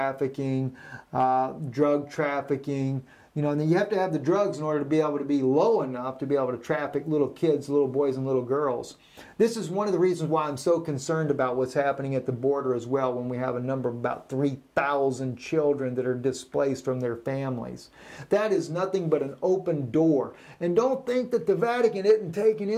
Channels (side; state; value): both; identical; correlation 1.00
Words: drug trafficking. You know, and then you have to have the drugs in order to be able to be low enough to be able to traffic little kids, little boys and little girls. This is one of the reasons why I'm so concerned about what's happening at the border as well, when we have a number of about 3,000 children that are displaced from their families. That is nothing but an open door. And don't think that the Vatican isn't taking